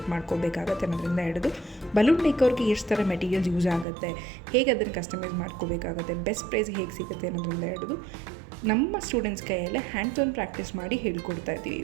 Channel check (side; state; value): left; drops out; at 3.9 s